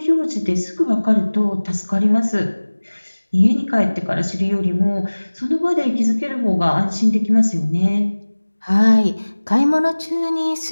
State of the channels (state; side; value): inverted; both; correlation -1.00